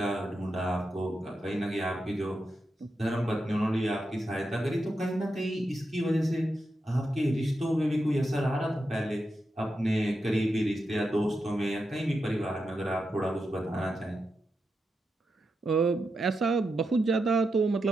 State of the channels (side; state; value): both; normal; correlation 0.87